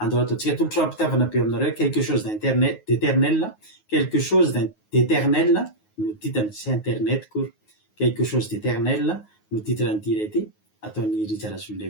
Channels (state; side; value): late; right; 9.4 ms